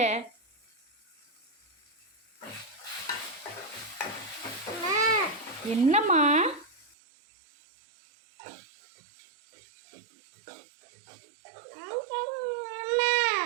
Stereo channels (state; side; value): drops out; left; at 7.0 s